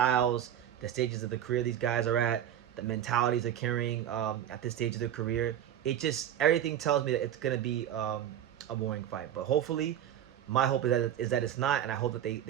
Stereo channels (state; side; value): quieter; left; 10.6 dB